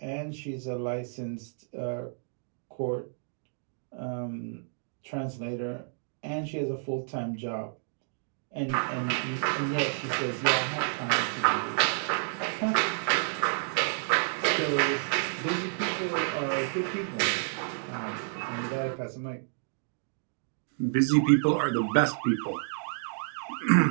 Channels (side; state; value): left; silent; digital silence